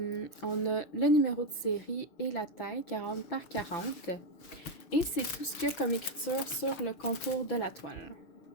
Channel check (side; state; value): right; late; 6.4 ms